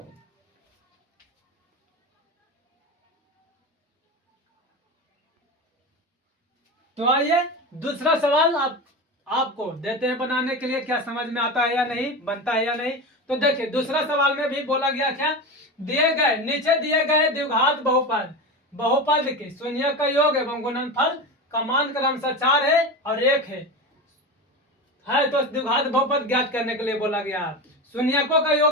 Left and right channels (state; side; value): normal; both; correlation 0.23